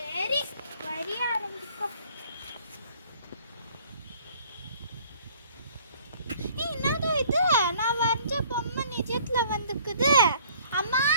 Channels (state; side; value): inverted; both; correlation -0.56